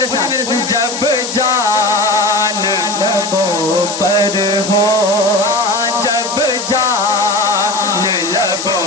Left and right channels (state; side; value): noise; left; hiss, 6 dB below the sound